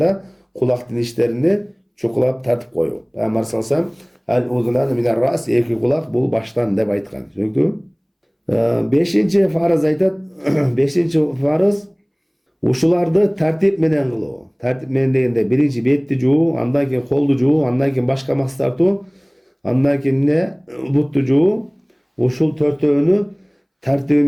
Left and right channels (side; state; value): both; identical; correlation 1.00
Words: кулактын иштерини чукулап тартып коюу. Пайгамбар саллаллаху алейхи вассалам "Ал-удунан минар рас" эки кулак бул баштан деп айткан. Түшүнүктүбү? 5-нчи фарыз айтат. 5-нчи фарыз ушуларды тартип менен кылуу. Тартип менен дегенде биринчи бетти жуу, андан кийин колду жуу, андан кийин башка мас тартуу, андан кийин бутту жуу. Ушул 4-өөнү тартиби